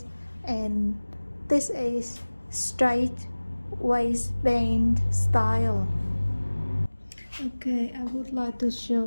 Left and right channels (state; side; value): inverted; both; correlation -1.00